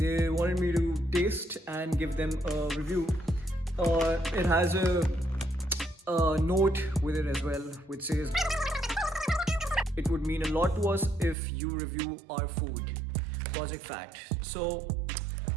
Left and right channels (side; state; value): left; drops out; at 11.4 s